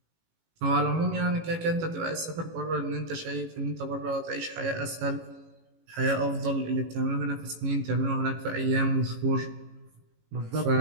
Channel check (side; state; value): left; late; 18 ms